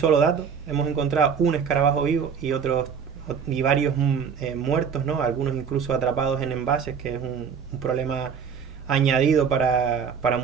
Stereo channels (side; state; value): left; quieter; 6.7 dB